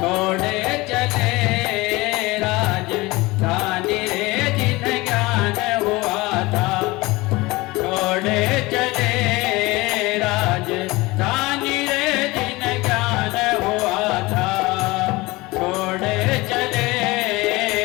चले राजधानी रे, जिन ज्ञान हुआ था छोड़े चले राजधानी रे, जिन ज्ञान हुआ था छोड़े चले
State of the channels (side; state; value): right; quieter; 21.8 dB